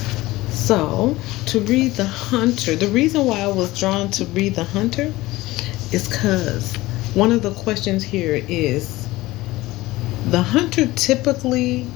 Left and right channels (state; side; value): quieter; right; 18.8 dB